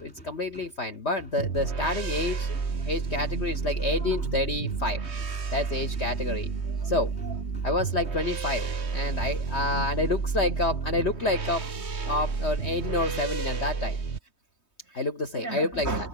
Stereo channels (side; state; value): right; late; 3.2 ms